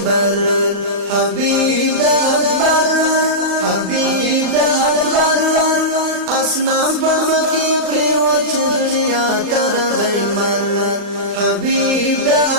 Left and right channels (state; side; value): late; left; 39 ms